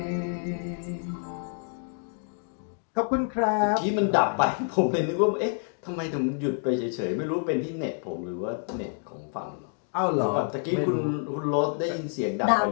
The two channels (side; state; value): right; silent; 59 dB below the other